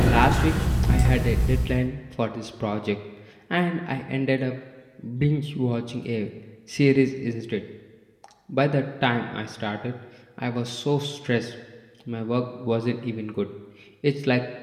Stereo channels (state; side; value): identical; both; correlation 1.00